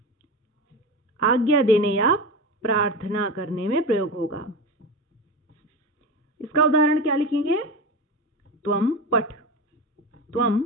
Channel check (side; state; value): both; normal; correlation 0.24